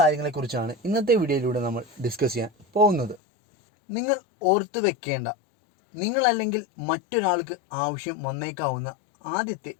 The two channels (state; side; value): drops out; right; at 3.2 s